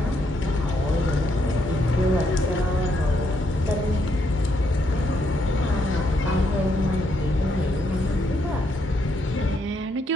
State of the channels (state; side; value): normal; both; correlation 0.75